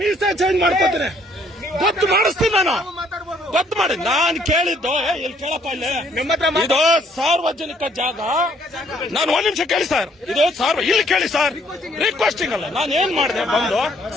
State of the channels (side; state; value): both; normal; correlation 0.65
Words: ಚೇಂಜ್ ಮಾಡ್ಕೋತೀನಿ. ಗೊತ್ತು ಮಾಡಿಸ್ತೀನಿ ನಾನು. ಗೊತ್ತು ಮಾಡಿ. ನಾನು ಕೇಳಿದ್ದು ಇಲ್ಲಿ ಕೇಳಪ್ಪ, ಇಲ್ಲಿ ಇದು ಸಾರ್ವಜನಿಕ ಜಾಗ. ನಾನು 1 ನಿಮಿಷ ಕೇಳಿ ಸರ್. ಇದು ಇಲ್ಲಿ ಕೇಳಿ ಸರ್. ರಿಕ್ವೆಸ್ಟಿಂಗ್ ಅಲ್ಲ. ನಾನು ಏನ್ ಮಾಡಿದೆ ಬಂದು